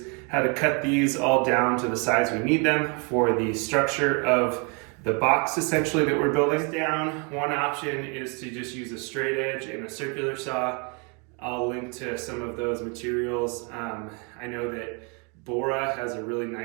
how to cut these all down to the size we need them for the structure of the box essentially that we're building. Down, one option is to just use a straight edge and a circular saw. I'll link to some of those materials. I know that Bora has a really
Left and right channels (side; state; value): left; quieter; 34.3 dB